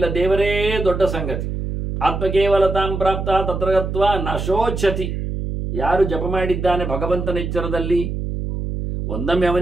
ದೇವರೇ ದೊಡ್ಡ ಸಂಗತಿ. ಆತ್ಮಕೇವಲತಾಂ ಪ್ರಾಪ್ತ ತತ್ರಗತ್ವ ನಶೋಚ್ಛತಿ. ಯಾರು ಜಪ ಮಾಡಿದ್ದಾನೆ ಭಗವಂತನ ಎಚ್ಚರದಲ್ಲಿ, ಒಂದೊಮ್ಮೆ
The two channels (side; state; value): right; noise; hum, 4 dB below the sound